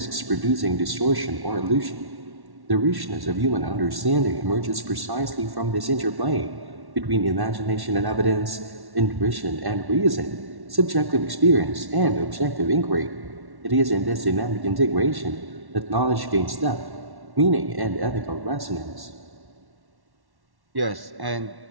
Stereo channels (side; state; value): left; late; 1.1 ms